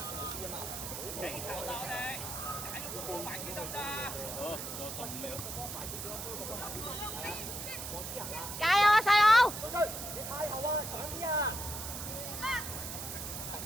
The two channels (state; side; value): noise; right; hiss, 6 dB below the sound